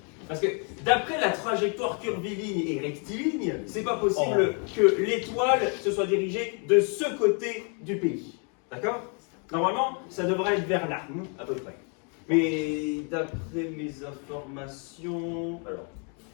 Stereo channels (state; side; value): quieter; right; 39.0 dB